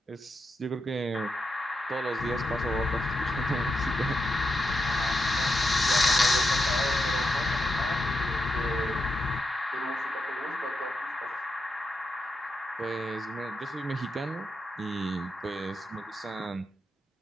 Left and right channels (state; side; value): normal; both; correlation 0.85